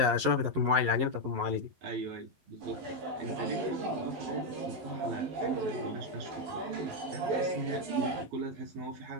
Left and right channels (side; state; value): left; late; 11 ms